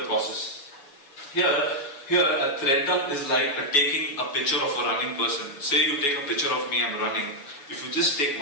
the process. Here, a thread dump is like taking a picture of a running person. Say you take a picture of me, I'm running. If you just take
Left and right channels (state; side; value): late; right; 7.1 ms